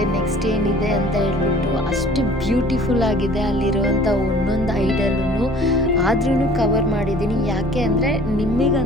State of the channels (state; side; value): normal; both; correlation 0.50